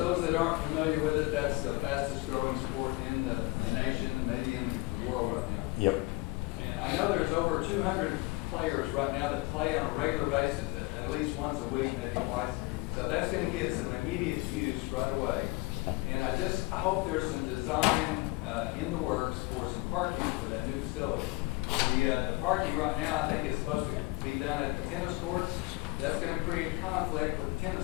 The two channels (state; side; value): quieter; right; 23.6 dB